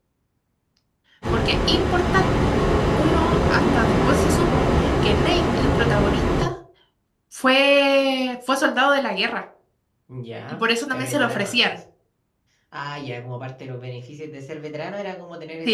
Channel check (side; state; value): both; identical; correlation 1.00